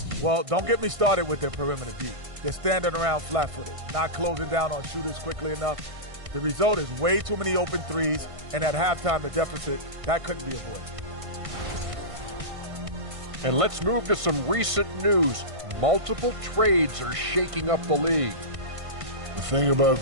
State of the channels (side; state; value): left; late; 1.5 ms